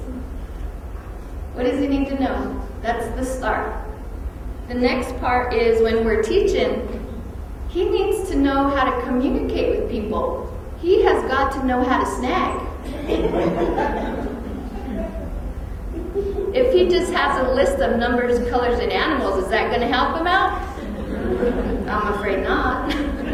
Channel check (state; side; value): identical; both; correlation 1.00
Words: What does he need to know? That's the start. The next part is when we're teaching, he needs to know how to communicate with people. He has got to know how to snag. If he just has a list of numbers, colors, and animals, is that going to help him out? I'm afraid not.